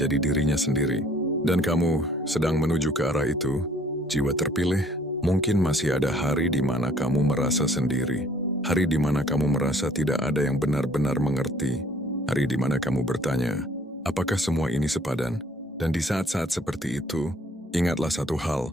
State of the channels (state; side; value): normal; both; correlation 0.58